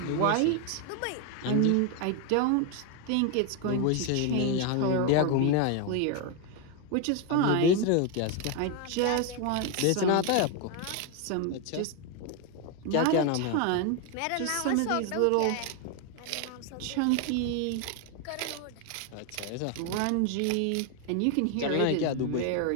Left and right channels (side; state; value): both; different; correlation 0.01